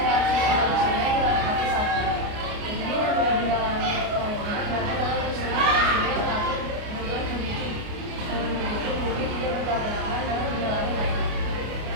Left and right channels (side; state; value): left; late; 29 ms